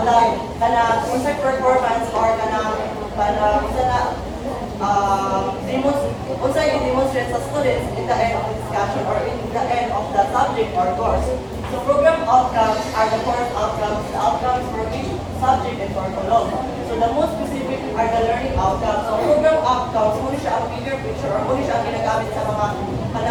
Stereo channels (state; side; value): identical; both; correlation 1.00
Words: the unsay performance or unsay i-demonstrate sa students in the end of the discussion or in the end of the subject or course. So program outcomes are the course outcomes, the outcomes for each subject and curriculum. So the most specific are the learning outcomes. So program outcomes, muna siya ang bigger picture or muna siya ang ginagamit sa mga